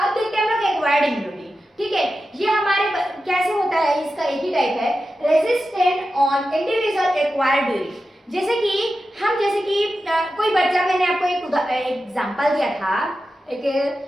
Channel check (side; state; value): both; normal; correlation 0.92